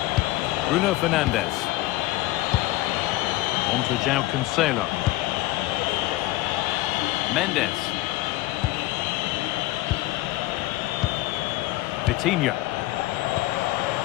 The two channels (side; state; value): right; quieter; 17.7 dB